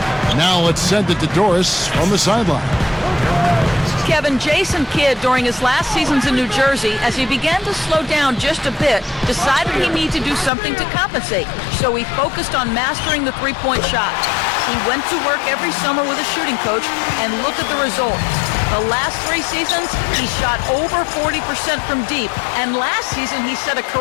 Now let's send it to Doris from the sideline. Kevin, Jason Kidd, during his last seasons in New Jersey, as he began to slow down just a bit, decided he needed to do something to compensate. So he focused on mastering the three-point shot. He went to work every summer with a shooting coach, and look at the results. The last 3 seasons, he shot over 40% from deep, and last season he set a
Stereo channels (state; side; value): drops out; right; at 10.5 s